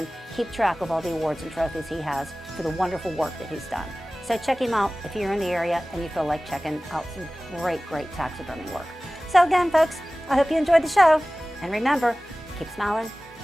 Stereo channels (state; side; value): normal; both; correlation 0.98